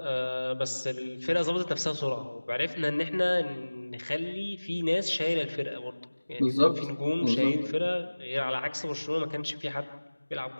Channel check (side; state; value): both; inverted; correlation -1.00